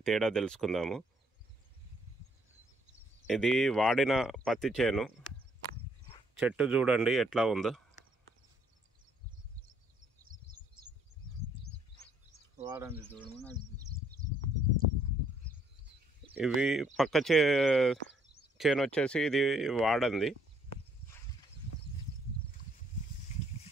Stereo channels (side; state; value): both; normal; correlation 0.67